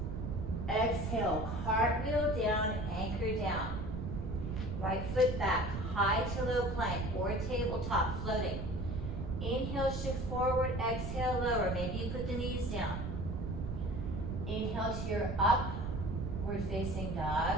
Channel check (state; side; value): noise; right; rumble, 5 dB below the sound